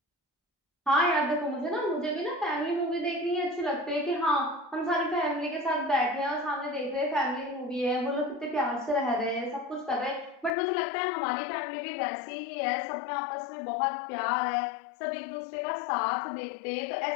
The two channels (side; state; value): right; drops out; at 10.6 s